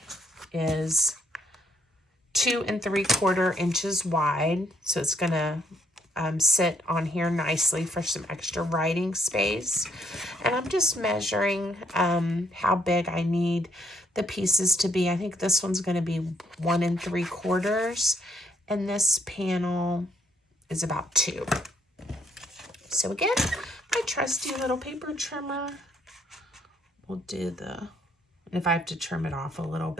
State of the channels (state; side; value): normal; both; correlation 0.70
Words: is 2 3/4 inches wide, so it's gonna sit on here nicely for some extra writing space. And I'm just measuring how big I need the pieces to be. I think this one's going to be 1 3/4, and this panel is about 2. So again, my trusty little paper trimmer will do the, and if I have to trim it off a little